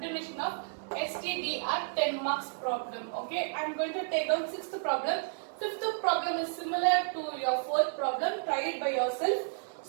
of STDR 10 marks problem. Okay, I am going to take down 6th problem. 5th problem is similar to your 4th problem. Try it by yourself.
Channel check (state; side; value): silent; left; digital silence